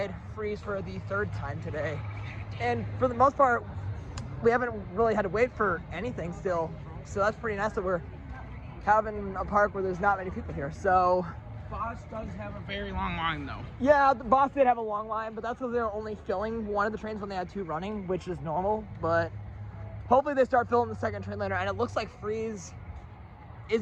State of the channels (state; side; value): identical; both; correlation 1.00